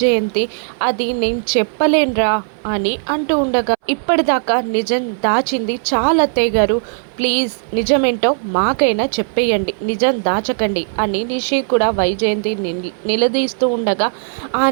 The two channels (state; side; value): silent; left; 65 dB below the other